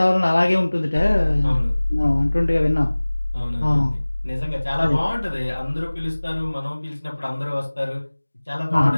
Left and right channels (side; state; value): both; inverted; correlation -1.00